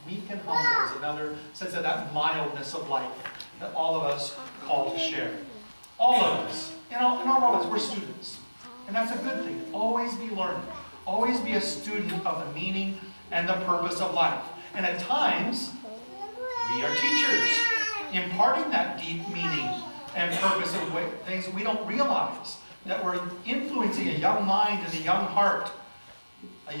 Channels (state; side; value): inverted; both; correlation -1.00